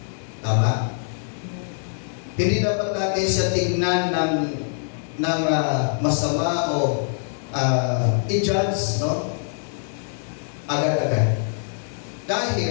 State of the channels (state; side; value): silent; right; 63 dB below the other